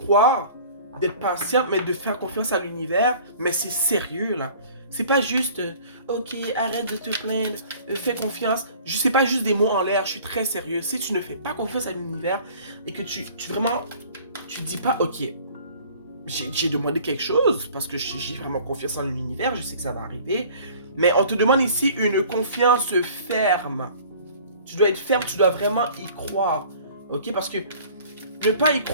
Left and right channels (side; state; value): both; inverted; correlation -0.49